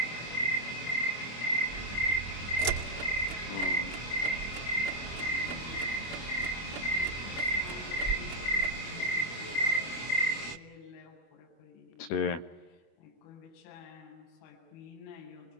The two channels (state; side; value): late; right; 25 ms